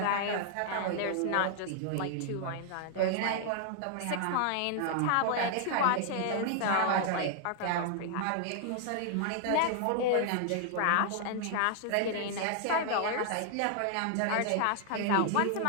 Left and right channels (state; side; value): different; both; correlation 0.00